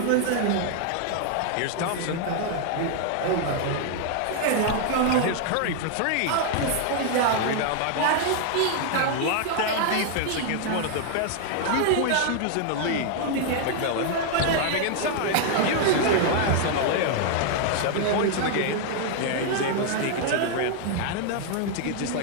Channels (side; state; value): both; different; correlation 0.00